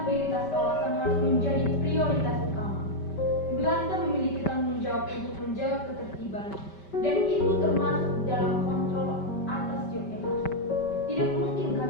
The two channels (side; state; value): right; late; 5.2 ms